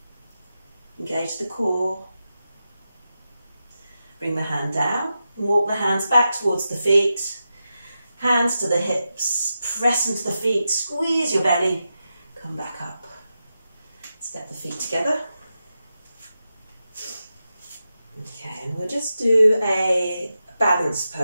Engage the core, bring the hand down, and walk the hands back towards the feet, hands to the hips, press into the feet, squeeze your belly, come back up. Step the feet together. Okay, and we'll just do a balance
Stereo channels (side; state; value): both; inverted; correlation -0.90